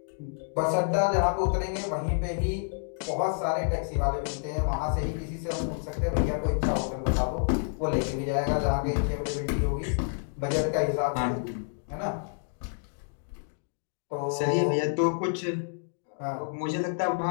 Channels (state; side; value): silent; right; 59 dB below the other